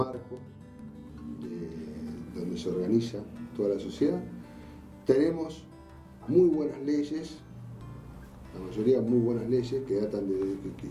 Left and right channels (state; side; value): identical; both; correlation 1.00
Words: donde se organiza toda la sociedad. Tenemos muy buenas leyes, la mayoría muy buenas leyes, que datan